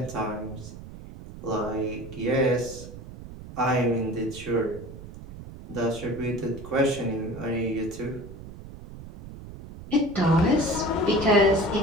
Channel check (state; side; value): noise; right; rumble, 14 dB below the sound